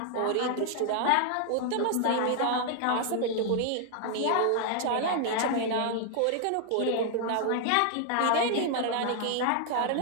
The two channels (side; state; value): both; different; correlation 0.00